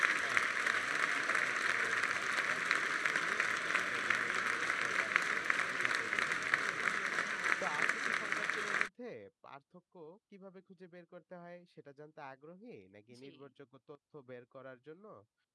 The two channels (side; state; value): both; identical; correlation 1.00